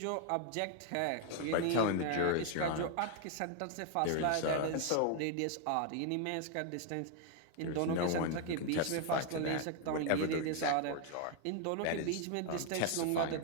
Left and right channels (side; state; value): both; different; correlation 0.00